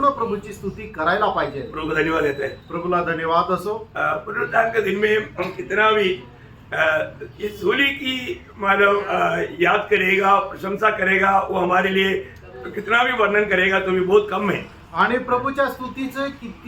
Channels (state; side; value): identical; both; correlation 1.00